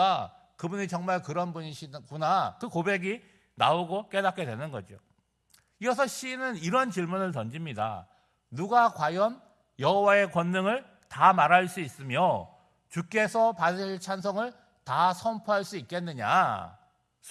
그분이 정말 그런 분이시구나. 그 고백이 나오고 깨닫게 되는 거죠. 이어서 시인은 이런 질문을 던집니다. 누가 과연 여호와의 권능을 다 말할 수 있으며 주께서 받으실 찬송을 다 선포할 수 있겠느냐?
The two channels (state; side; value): identical; both; correlation 1.00